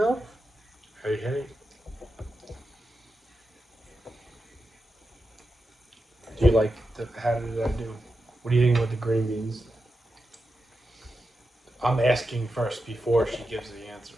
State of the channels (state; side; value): normal; both; correlation 0.89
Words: Hey. Do you like how did I do? What do you think about the green beans? I'm asking first before she gives the answer.